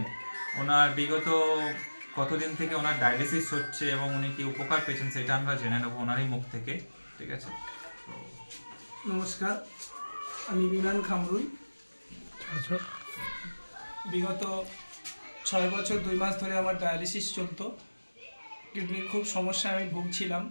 ওনার বিগত কতদিন থেকে ওনার ডায়ালিসিস হচ্ছে এবং উনি কি উপকার পেয়েছেন সেটা আমরা জেনে নেবো ওনারই মুখ থেকে। ঠিক আছে, নমস্কার, আমি বিমান খামরুল। বিগত 6 বছর 2 মাস ধরে আমার ডায়ালিসিস চলতো। কিডনির খুব সমস্যায় আমি ভুগছিলাম।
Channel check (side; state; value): both; inverted; correlation -1.00